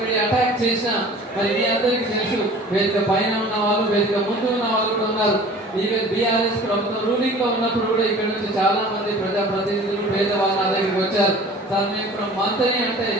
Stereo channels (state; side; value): normal; both; correlation 0.45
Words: అటాక్ చేసినా మరి మీ అందరికీ తెలుసు, వేదిక పైన ఉన్న వాళ్ళు, వేదిక ముందు ఉన్న వాళ్ళు కూడా ఉన్నారు. ఈవెన్ బీఆర్ఎస్ ప్రభుత్వం రూలింగ్ లో ఉన్నప్పుడు కూడా ఇక్కడ నుంచి చాలా మంది ప్రజాప్రతినిధులు పేదవాళ్ళు నా దగ్గరికి వచ్చారు. సార్ మేము ఇప్పుడు మంత్ని అంటే